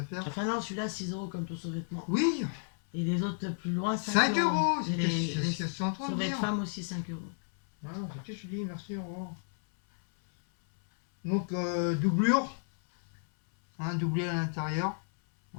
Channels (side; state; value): right; silent; 56 dB below the other